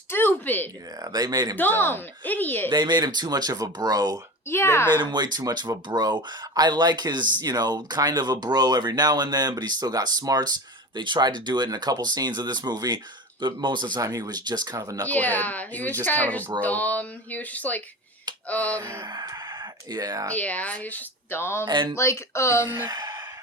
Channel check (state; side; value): normal; both; correlation 0.31